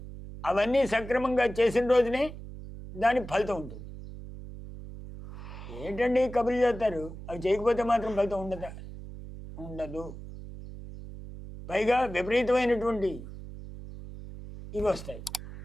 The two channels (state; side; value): noise; right; hum, 12 dB below the sound